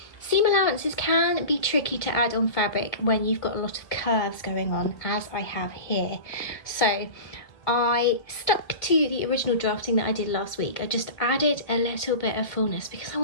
seam allowances can be tricky to add on fabric when you've got a lot of curves going on, as I have here. So I stuck to the original drafting that I did last week. I just added a little bit of fullness because I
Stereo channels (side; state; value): right; late; 2.0 ms